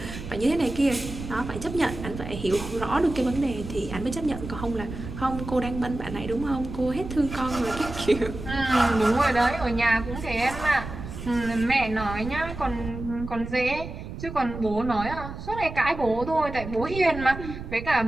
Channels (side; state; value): right; noise; rumble, 9 dB below the sound